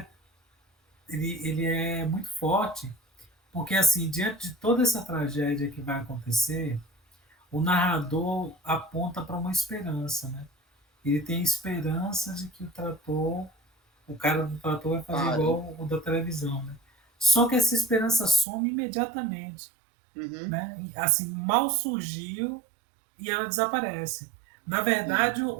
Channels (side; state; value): left; drops out; at 18.4 s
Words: ele é muito forte, porque assim, diante de toda essa tragédia que vai acontecer, o narrador aponta para uma esperança, né? Ele tem esperança de que o cara do trator vai fazer Pare. igual o da televisão, né? Só que essa esperança some imediatamente, Uhum. né? E, assim, mal surgiu e ela desaparece. Na Sim. verdade,